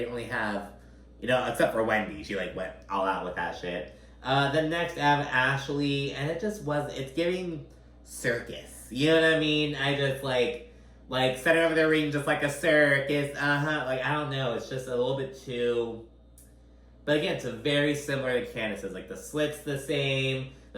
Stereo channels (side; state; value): both; identical; correlation 1.00